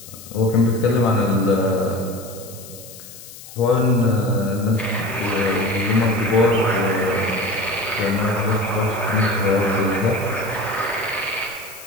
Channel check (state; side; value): noise; left; hiss, 17 dB below the sound